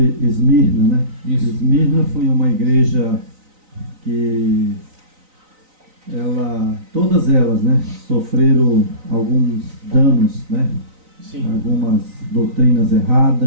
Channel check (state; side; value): late; left; 3.9 ms